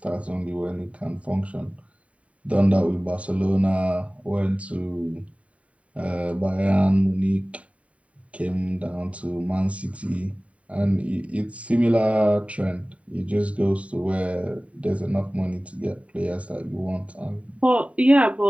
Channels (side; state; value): left; late; 0.066 ms